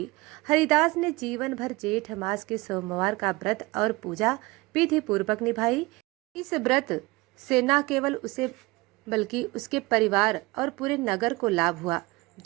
हरिदास ने जीवन भर जेठ मास के सोमवार का व्रत और पूजा विधि पूर्वक निभाई। इस व्रत से न केवल उसे बल्कि उसके परिवार और पूरे नगर को लाभ हुआ।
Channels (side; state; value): left; quieter; 23.0 dB